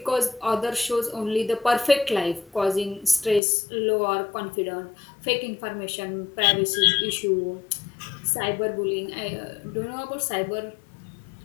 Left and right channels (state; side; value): drops out; right; at 3.4 s